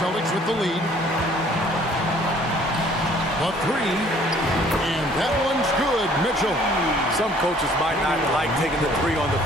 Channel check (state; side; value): normal; both; correlation 0.57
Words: with the lead. The three. And that one's good. Mitchell. Some coaches might not like taking the three on the